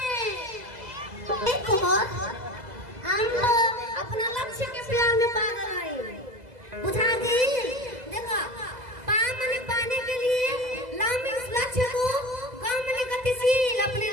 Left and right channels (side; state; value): left; late; 2.0 ms